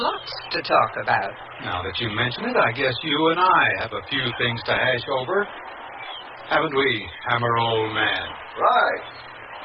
to talk about. Now that you mention it, I guess you and I have a few things to hash over. Haven't we, Hammer old man? Right.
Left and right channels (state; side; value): identical; both; correlation 1.00